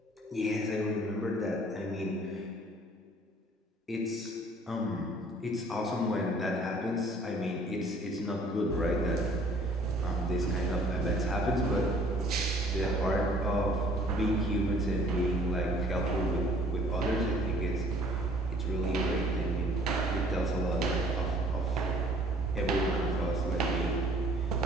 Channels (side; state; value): both; normal; correlation 0.56